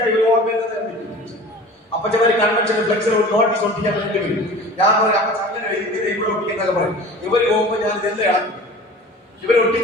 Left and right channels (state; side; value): normal; both; correlation 0.40